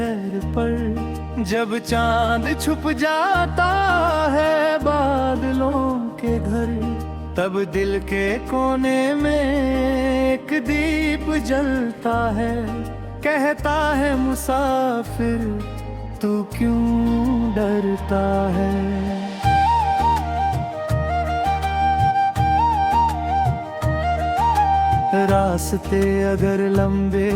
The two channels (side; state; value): both; identical; correlation 1.00